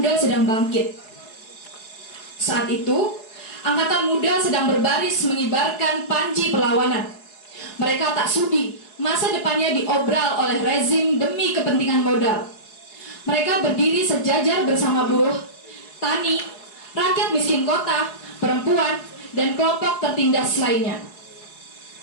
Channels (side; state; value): right; late; 4.7 ms